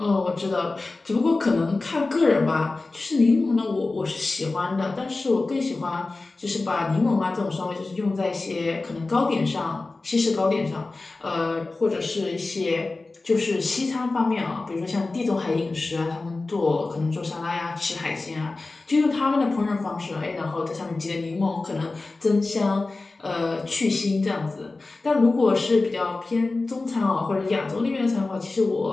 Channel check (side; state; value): right; quieter; 3.4 dB